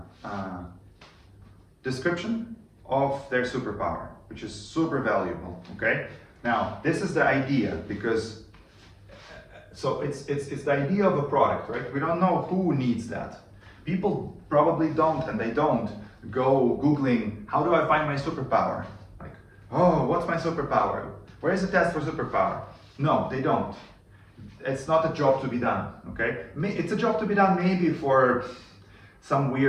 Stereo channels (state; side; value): identical; both; correlation 1.00